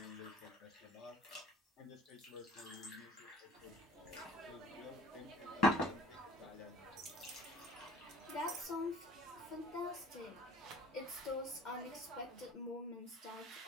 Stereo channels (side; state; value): both; normal; correlation 0.50